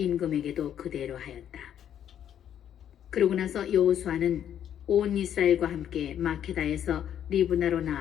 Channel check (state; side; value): quieter; right; 9.9 dB